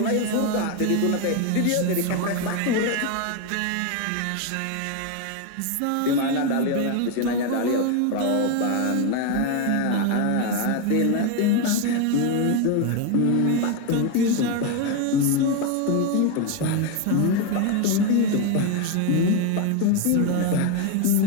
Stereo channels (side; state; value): both; different; correlation 0.02